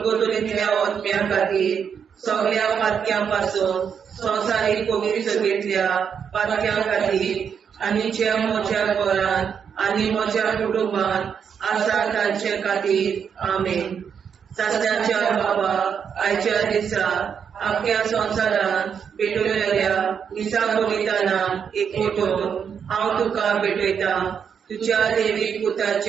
अग्न्या खातीर सगळ्या पातक्या पासून संवसारीक पवित्र सभेंतल्या पातक्या खातीर आनी जे म्हज्या घरांत आनी म्हज्या कुटुंबांत आसा तांचे खातीर आमेन. शासनाच्या बापा आयच्या दिसा आपल्या संवसारांत भेटलेल्या दिसा बलिदानाक एकवटून हांव तुका भेटयता तुज्या देवीक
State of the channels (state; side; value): quieter; left; 7.2 dB